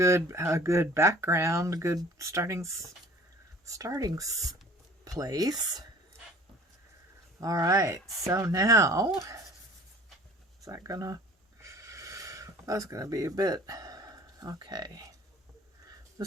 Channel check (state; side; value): normal; both; correlation 0.49